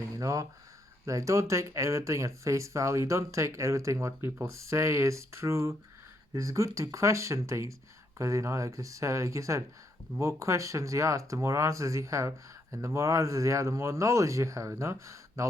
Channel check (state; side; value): normal; both; correlation 0.75